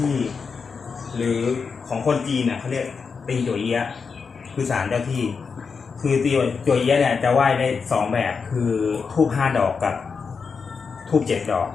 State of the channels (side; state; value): right; quieter; 5.4 dB